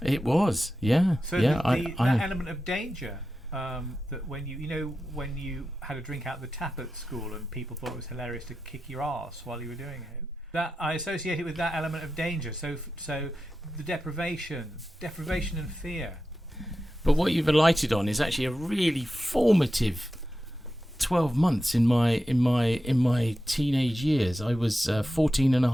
It was, yeah. So yeah, that element of danger, that when when you had a drink out of the tap at school and people thought it was hilarious to kick your arse while you were doing it, that I associate it with that element of danger. So the deprivation and fear. But what you've alighted on is actually a really formative 12 months in my teenage years. I was 14 and a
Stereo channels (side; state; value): both; normal; correlation 0.91